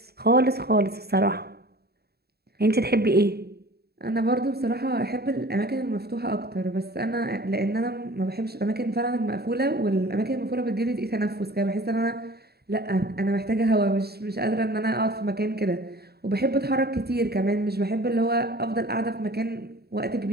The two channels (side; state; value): left; late; 0.46 ms